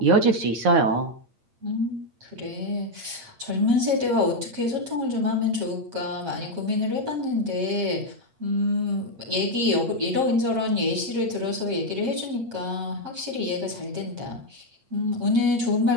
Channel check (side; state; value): left; late; 8.6 ms